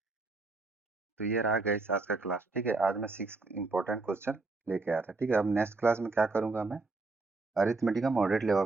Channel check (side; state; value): left; quieter; 3.6 dB